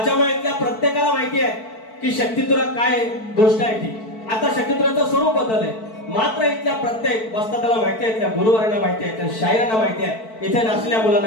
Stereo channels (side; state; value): right; late; 4.5 ms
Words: इथल्या प्रत्येकाला माहिती आहे की शक्तितुरा काय गोष्ट आहे ती. आता शक्तितुराचं स्वरूप बदललंय मात्र इथल्या प्रत्येक वस्तादाला माहिती आहे इथल्या गुरुवारांना माहिती आहे इथल्या शायरांना माहिती आहे इथे नाचलेल्या